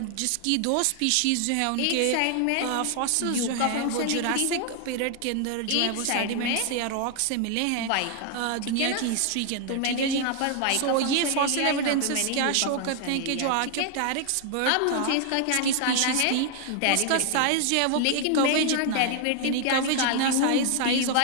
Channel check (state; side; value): different; both; correlation 0.00